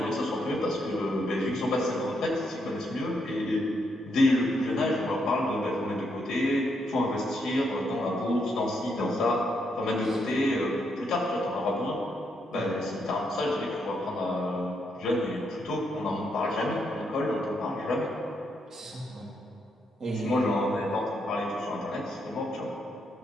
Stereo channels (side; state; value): both; normal; correlation 0.78